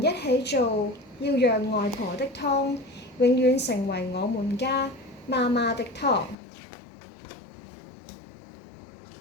一起做，要讓外婆的湯永遠成為我們家媽媽的湯。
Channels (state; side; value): drops out; right; at 6.4 s